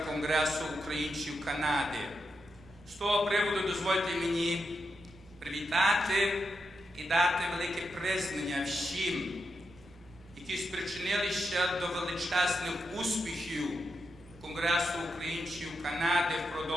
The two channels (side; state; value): both; normal; correlation 0.85